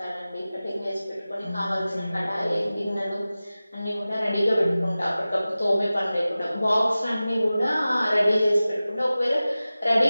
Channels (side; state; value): both; inverted; correlation -0.96